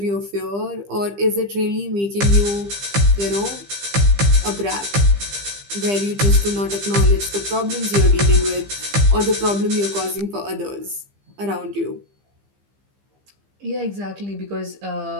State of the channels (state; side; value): late; left; 15 ms